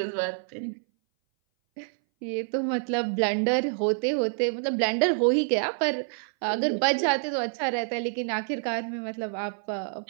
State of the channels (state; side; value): silent; left; 59 dB below the other